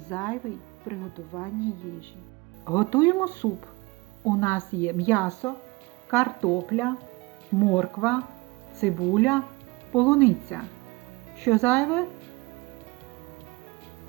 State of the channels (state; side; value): quieter; left; 24.0 dB